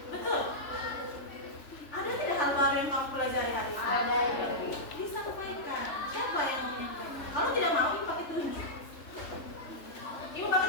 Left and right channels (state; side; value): late; right; 3.3 ms